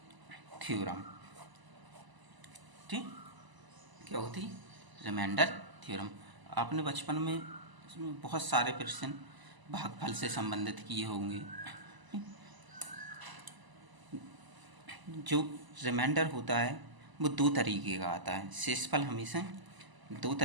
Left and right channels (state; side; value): late; left; 1.0 ms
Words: थ्योरम। ठीक, क्या होती रिमाइंडर थ्योरम। आपने बचपन में इसमें बहुत सारे प्रश्न भागफल से संबंधित किए होंगे। जो रिमाइंडर होता है वो 2 तरीके का आता है। शेषफल हमेशा 2